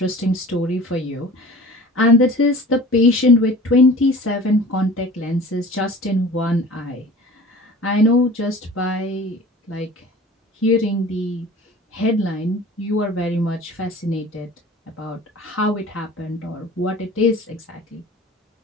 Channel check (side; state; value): both; normal; correlation 0.42